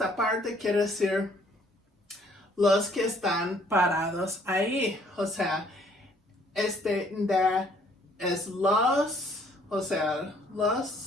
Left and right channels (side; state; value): both; normal; correlation 0.62